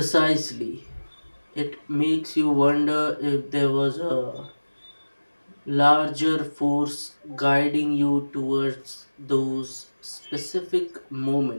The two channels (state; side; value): inverted; both; correlation -1.00